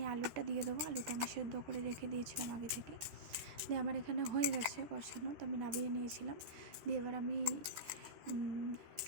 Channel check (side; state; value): left; late; 13 ms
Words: আলুটা দিয়ে দেবো। আলুটা আমি সেদ্ধ করে রেখে দিয়েছিলাম আগে থেকে। দিয়ে আমার এখানে হয়ে গেছে কষানো, তো আমি নামিয়ে নিয়েছিলাম। দিয়ে এবার আমি